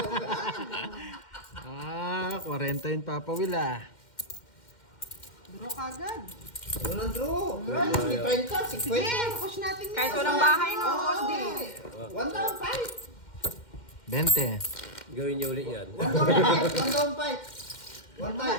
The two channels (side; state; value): right; late; 2.1 ms